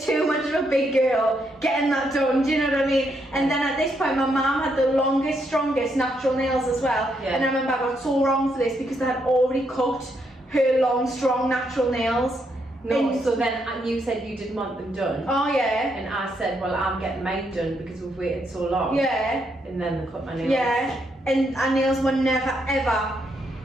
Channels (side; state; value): both; normal; correlation 0.77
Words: much of a big girl getting that done. Do you know what I mean? And then at this point, my mum had the longest, strongest natural nails as well. Yeah. And I remember I got so wrong for this because they had already cut her long, strong natural nails. No, And- so then you said you didn't want them done. Oh yeah. And I said, well, I'm getting mine done because we've waited so long. Yeah. And then they cut my nails. Yeah. And our nails were never ever